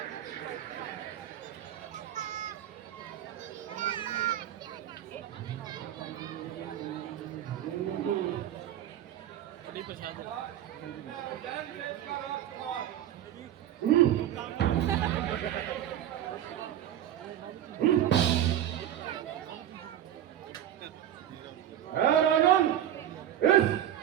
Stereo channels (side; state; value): left; quieter; 11.3 dB